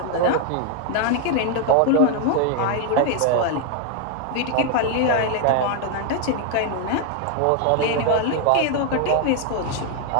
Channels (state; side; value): different; both; correlation 0.01